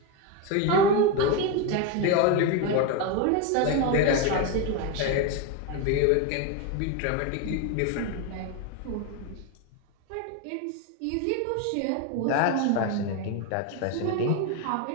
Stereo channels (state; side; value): different; both; correlation 0.03